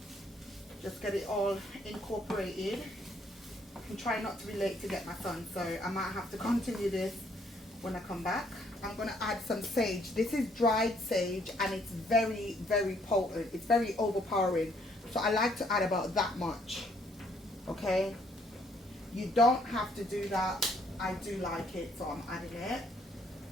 Just get it all incorporated. I'm trying not to be late to get my son, so I might have to continue this when I come back. I'm going to add some sage. This is dried sage and it's very, very potent. It's very overpowering. So I like to add about that much. Okay? You don't have to do that. I do like it, so I'm adding it.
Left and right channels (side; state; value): both; normal; correlation 0.67